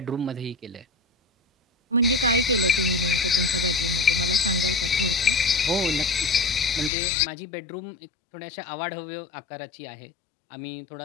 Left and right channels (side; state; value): right; drops out; at 6.9 s